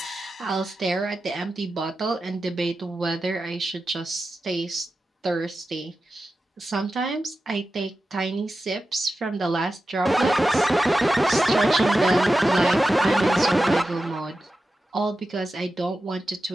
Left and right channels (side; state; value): both; normal; correlation 0.92